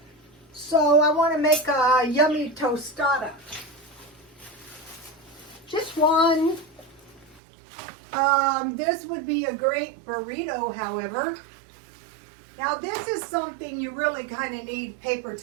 So I want to make a yummy tostada. Just one. This would be a great burrito, however. Now this is something you really kind of need paper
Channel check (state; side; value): drops out; left; at 7.4 s